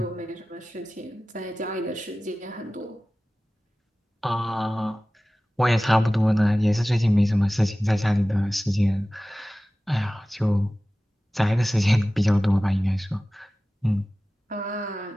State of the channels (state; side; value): normal; both; correlation 0.96